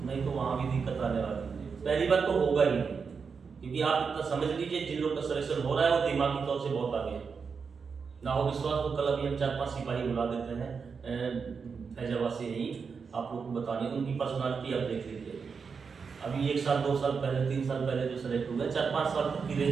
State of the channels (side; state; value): left; quieter; 5.6 dB